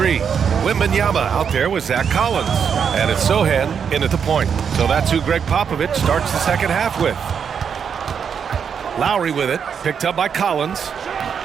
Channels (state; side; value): quieter; left; 7.1 dB